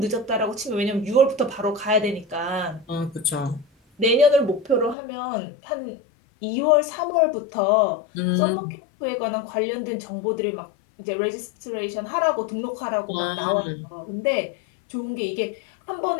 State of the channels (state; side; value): drops out; right; at 5.0 s